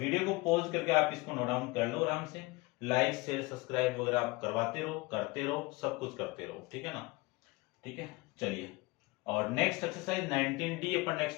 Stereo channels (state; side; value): quieter; right; 23.1 dB